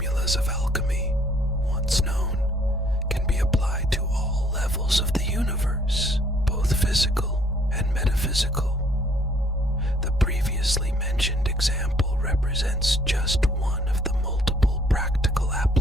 of alchemy, once known, can be applied to all levels of the universe, both physical and metaphysical. The previously mentioned example represents just one of the multiple practical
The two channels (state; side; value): normal; both; correlation 0.63